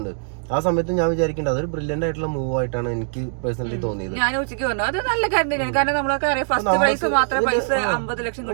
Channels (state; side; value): silent; left; digital silence